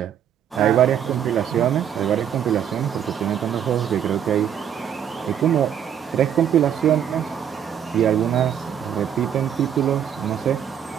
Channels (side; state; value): left; quieter; 9.2 dB